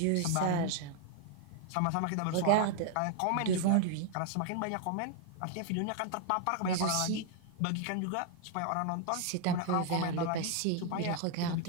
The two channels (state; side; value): different; both; correlation 0.00